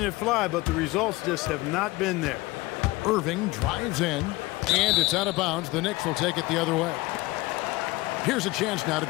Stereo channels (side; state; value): right; quieter; 20.7 dB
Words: it fly, but the results just have not been there. Irving drives in, and it's out of bounds. The Knicks will take it the other way. Here's a chance now to